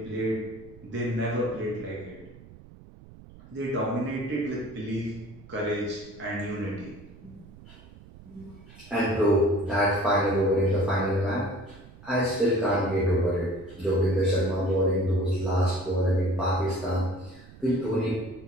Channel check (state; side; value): noise; right; rumble, 20 dB below the sound